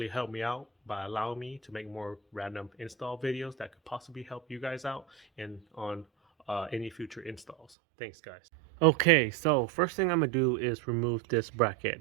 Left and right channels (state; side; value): drops out; left; at 7.7 s